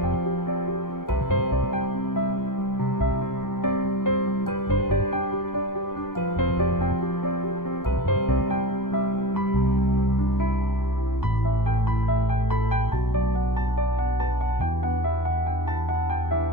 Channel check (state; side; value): late; right; 0.92 ms